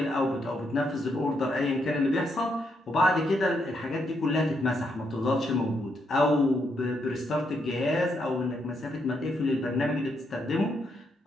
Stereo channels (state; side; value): normal; both; correlation 0.78